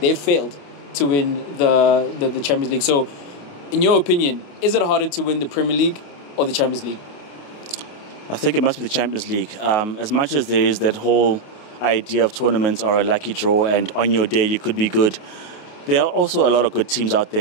failed to win the Champions League. So, in your opinion, is it harder to win the Premier League or the Champions League? I think it must be the Champions League. As much as there is that whole idea of tournaments are a lucky draw and on your day you could be good, there are also a lot of good teams out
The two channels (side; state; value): right; late; 28 ms